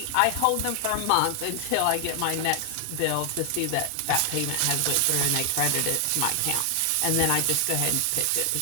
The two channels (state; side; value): different; both; correlation 0.00